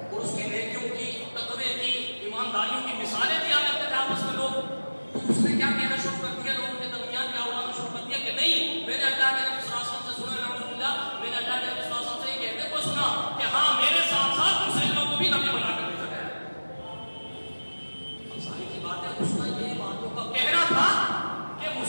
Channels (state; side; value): inverted; both; correlation -1.00